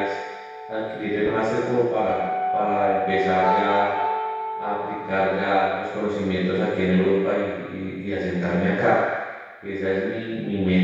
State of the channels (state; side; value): identical; both; correlation 1.00